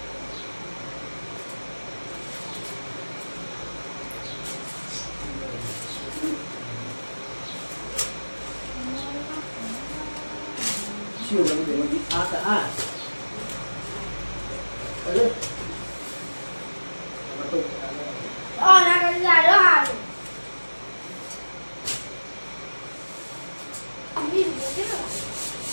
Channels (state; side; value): inverted; both; correlation -1.00